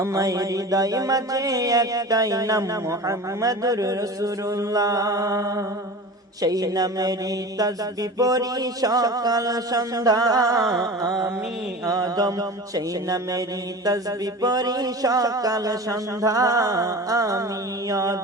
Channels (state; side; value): normal; both; correlation 0.34